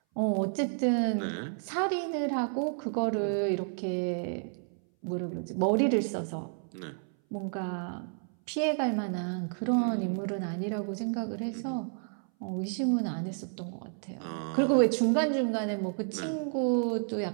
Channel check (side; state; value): left; silent; 57 dB below the other